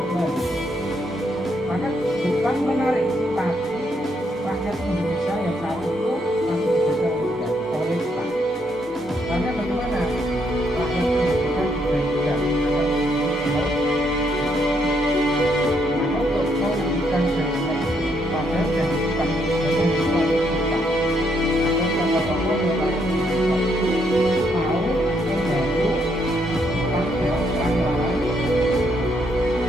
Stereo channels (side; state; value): both; normal; correlation 0.74